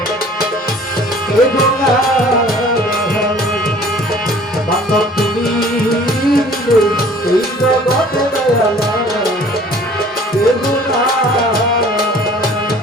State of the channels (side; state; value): both; normal; correlation 0.51